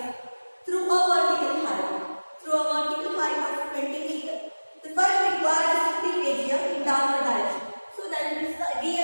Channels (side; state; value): both; inverted; correlation -1.00